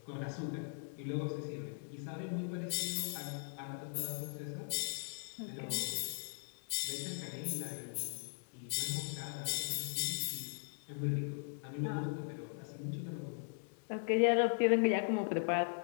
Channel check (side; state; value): right; silent; digital silence